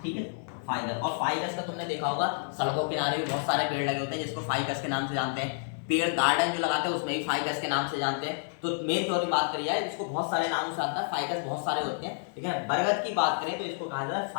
ठीक है, फाइकस। और फाइकस का तुमने देखा होगा सड़कों के किनारे भी बहुत सारे पेड़ लगे होते हैं जिसको फाइकस के नाम से जानते हैं। पेड़ गार्डन जो लगाते हैं उसमें भी फाइकस के नाम से जानते हैं। तो मेन तौर पर बात करी जाए इसको बहुत सारे नामों से आता है, फाइकस बहुत सारे होते हैं, ठीक है। बरगद की बात करें तो इसको कहा जाता है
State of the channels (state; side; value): silent; right; digital silence